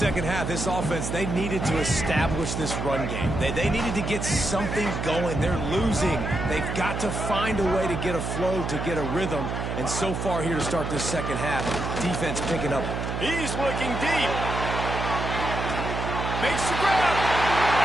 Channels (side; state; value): right; noise; hum, 3 dB below the sound